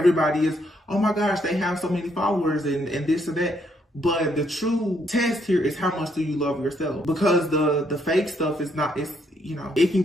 is, oh my gosh, they have so many followers and this or that. But the true test here is how much do you love yourself? Because the fake stuff is not, it's, you know, it can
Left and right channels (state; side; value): normal; both; correlation 0.72